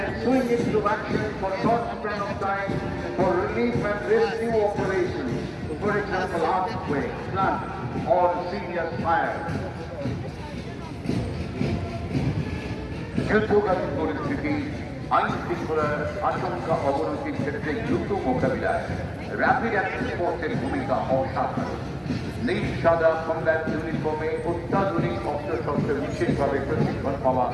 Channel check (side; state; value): both; identical; correlation 1.00